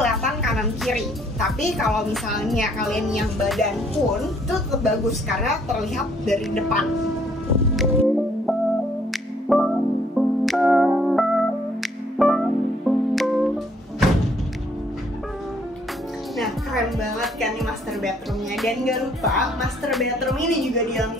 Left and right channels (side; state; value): both; normal; correlation 0.64